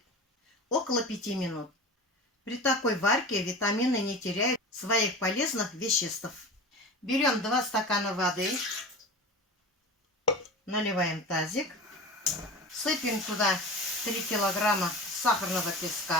около 5 минут. При такой варке витамины не теряют своих полезных веществ. Берем 2 стакана воды, наливаем тазик, сыпем туда 3 килограмма сахарного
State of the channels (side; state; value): both; normal; correlation 0.32